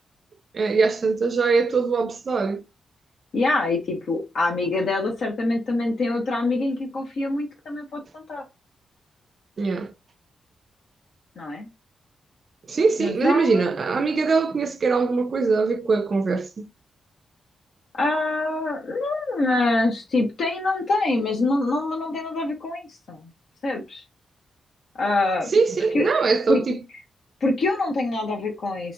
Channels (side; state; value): both; normal; correlation 0.83